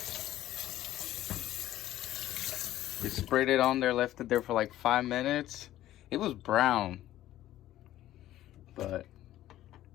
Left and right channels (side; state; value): right; quieter; 13.9 dB